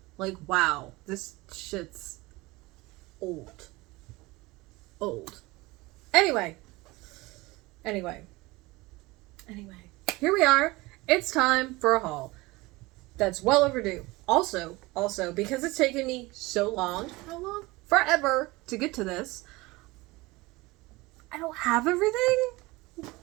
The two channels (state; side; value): quieter; left; 21.8 dB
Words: Like, wow. This shit's old. Old. Anyway. Here we are. It's time for a haul. That's well overdue. Also, because it's taken me so long, how long? Forever to get to this. I don't have everything.